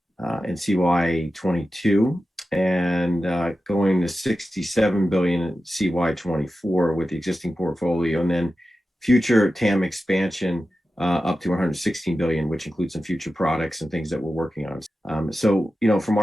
CY22 and going to $67 billion in CY24 with the existing portfolio, and then future TAM expansion up to $116 billion, which includes some future products and things that we're working on. So, from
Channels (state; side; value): normal; both; correlation 0.93